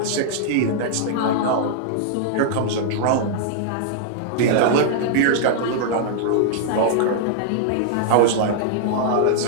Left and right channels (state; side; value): different; both; correlation -0.01